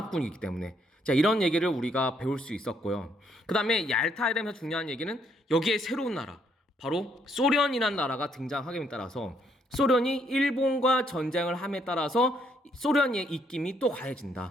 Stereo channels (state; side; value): normal; both; correlation 0.71